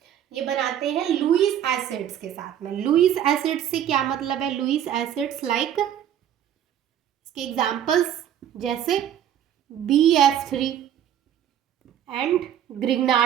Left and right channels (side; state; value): left; quieter; 10.2 dB